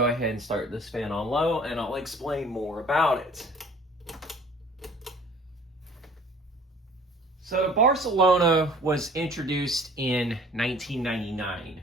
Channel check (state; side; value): normal; both; correlation 0.50